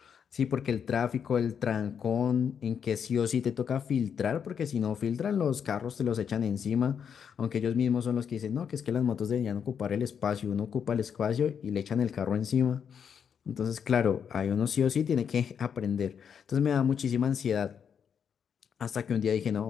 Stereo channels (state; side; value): quieter; right; 7.5 dB